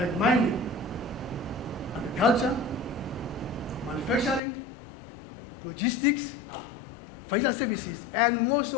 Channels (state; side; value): drops out; right; at 4.4 s